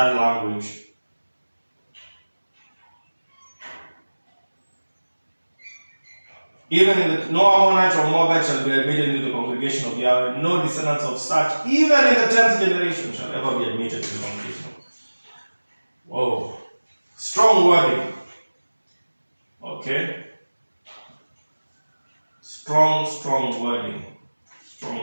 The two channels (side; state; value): both; inverted; correlation -1.00